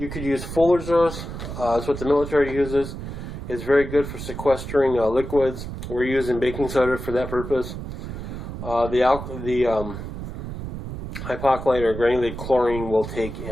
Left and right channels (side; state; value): right; noise; rumble, 8 dB below the sound